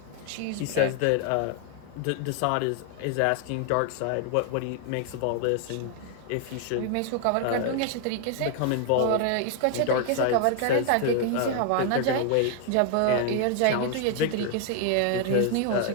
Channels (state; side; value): different; both; correlation 0.00